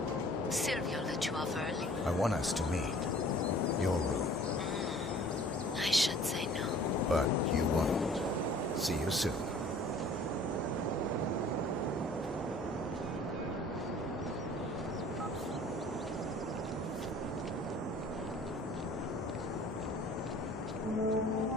Silvio let you off early. I want us to meet. Your room. I should say no. But you won't. See you soon.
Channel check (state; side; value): normal; both; correlation 0.50